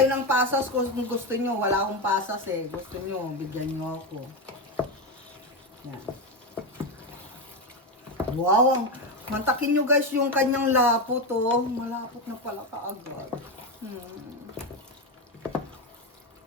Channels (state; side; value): normal; both; correlation 0.12